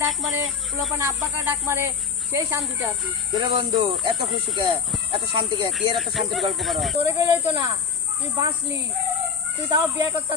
ডাক মারে পোলা পানে আব্বাকে ডাক মারে, সেই শান্তিতে আছি। তোরে বন্ধু এত খুশি কে, এত শান্তি কে, কি এর এত শান্তির গল্প করো? তোরে কইলে তো না, তুই বাঁচলি, তুই তাও বিয়া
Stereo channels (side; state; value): right; quieter; 6.3 dB